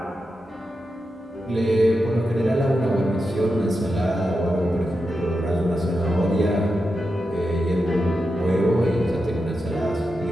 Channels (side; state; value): both; normal; correlation 0.88